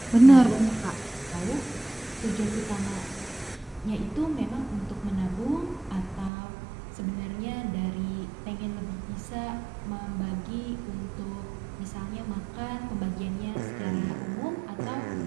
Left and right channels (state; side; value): drops out; left; at 6.3 s